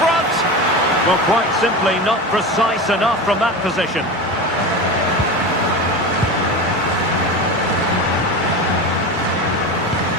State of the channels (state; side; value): normal; both; correlation 0.25